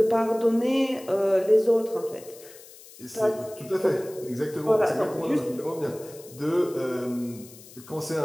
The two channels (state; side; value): noise; left; hiss, 20 dB below the sound